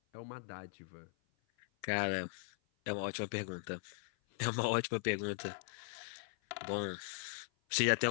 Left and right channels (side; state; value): right; silent; 52 dB below the other